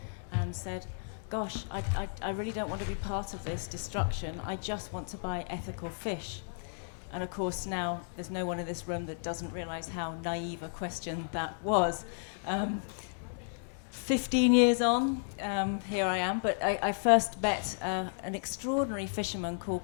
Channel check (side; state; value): right; silent; digital silence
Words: and said, gosh, I really don't want to be part of this destruction. I just want to buy ethical fish. And of course now there's no one in this room that doesn't realise how naive a question that was. 15 years on, here I am, but I first met an extraordinary fisherman